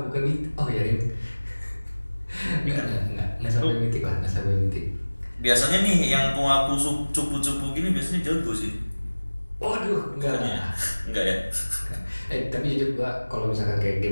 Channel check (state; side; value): inverted; both; correlation -1.00